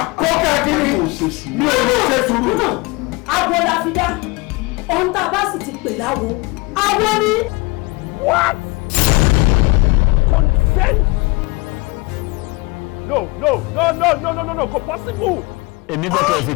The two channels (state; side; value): quieter; right; 24.8 dB